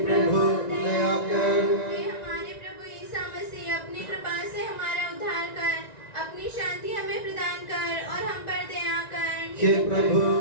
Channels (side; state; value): right; late; 1.9 ms